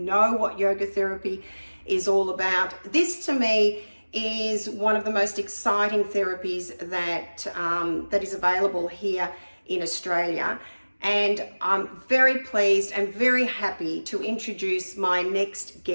what yoga therapy is all about. This, to me, is one of the most exciting therapies that is available here in Australia. And I'm very pleased and very happy to introduce my next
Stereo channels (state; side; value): inverted; both; correlation -1.00